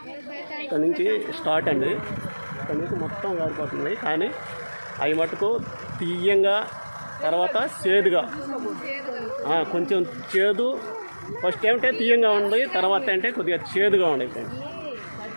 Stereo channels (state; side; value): inverted; both; correlation -1.00